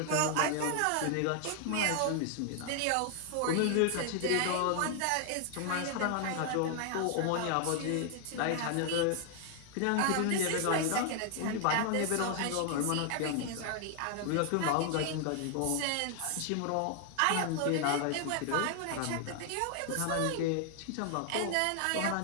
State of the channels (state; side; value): different; both; correlation 0.00